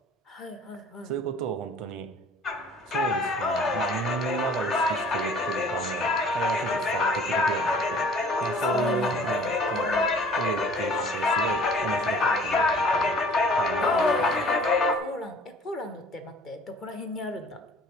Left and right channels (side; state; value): both; normal; correlation 0.51